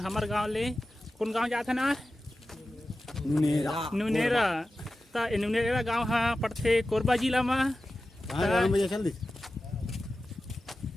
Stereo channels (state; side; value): normal; both; correlation 0.94